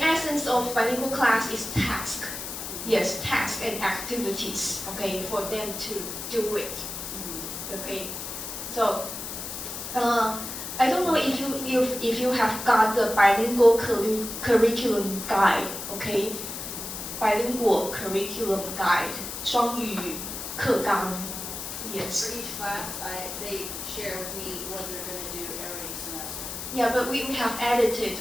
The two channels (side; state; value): left; noise; hiss, 7 dB below the sound